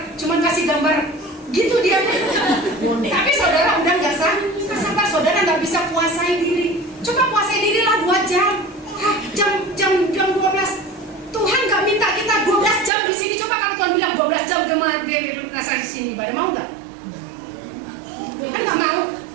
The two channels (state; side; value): drops out; left; at 12.9 s